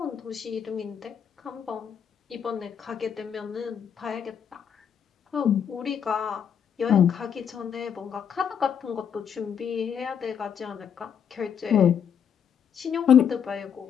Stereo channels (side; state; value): right; quieter; 7.9 dB